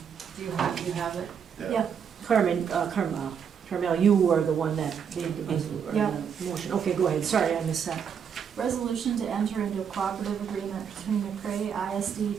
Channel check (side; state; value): left; quieter; 7.4 dB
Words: you have it? Yeah. Carmel, you were the one that made the Yeah. motion. Okay, go ahead. Sorry, I missed that. Resolution to enter into a cooperative agreement between McCray ISD